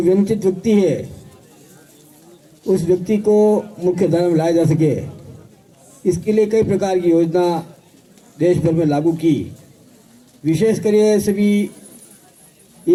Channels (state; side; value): identical; both; correlation 1.00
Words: वंचित व्यक्ति है उस व्यक्ति को मुख्य धारा में लाया जा सके, इसके लिए कई प्रकार की योजना देश भर में लागू की। विशेष कर सभी